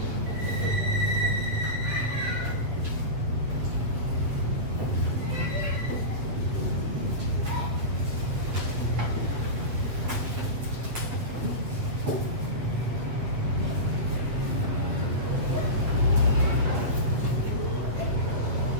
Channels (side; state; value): left; late; 8.2 ms